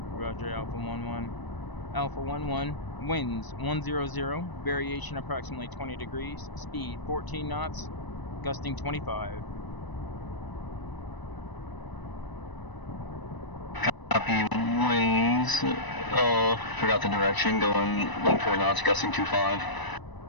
Roger, Alpha 1-1. Alpha 1-1, winds 100, variation approximately 20 degrees, speed 14 knots, gusting 25. Copy. Winds. Forgot the direction. Going 14 knots, gusting 25.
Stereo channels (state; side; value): late; right; 1.0 ms